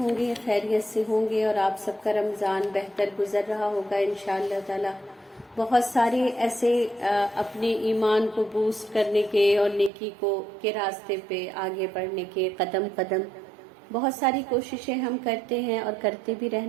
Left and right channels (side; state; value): left; drops out; at 9.9 s